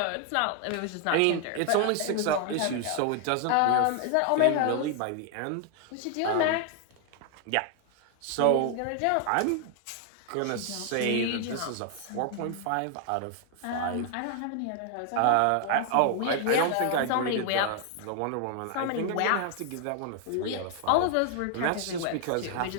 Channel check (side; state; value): both; different; correlation 0.00